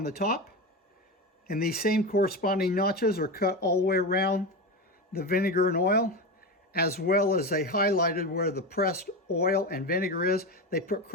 the top, and these same corresponding notches are cut all the way around the vinegar and oil, as well as they highlighted where the pressed oil and vinegar is. They put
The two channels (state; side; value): normal; both; correlation 0.20